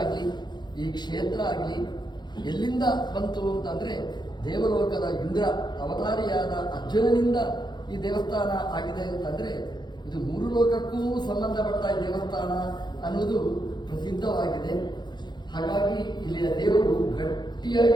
ಈ ಕ್ಷೇತ್ರ ಆಗಲಿ ಎಲ್ಲಿಂದ ಬಂತು ಅಂತಂದರೆ ದೇವಲೋಕದ ಇಂದ್ರ ಅವತಾರಿಯಾದ ಅರ್ಜುನನಿಂದ ಈ ದೇವಸ್ಥಾನ ಆಗಿದೆ ಅಂತಂದರೆ ಇದು ಮೂರು ಲೋಕಕ್ಕೂ ಸಂಬಂಧಪಟ್ಟ ದೇವಸ್ಥಾನ ಅನ್ನೋದು ಪ್ರಸಿದ್ಧವಾಗಿದೆ. ಹಾಗಾಗಿ ಇಲ್ಲಿಯ ದೇವರು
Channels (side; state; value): right; late; 0.21 ms